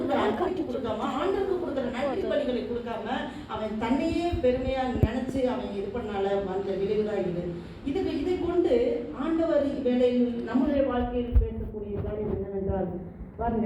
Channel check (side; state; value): both; identical; correlation 1.00